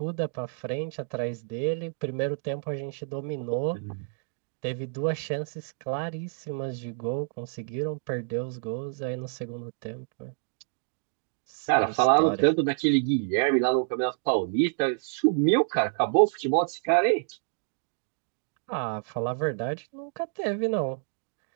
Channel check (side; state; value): left; silent; digital silence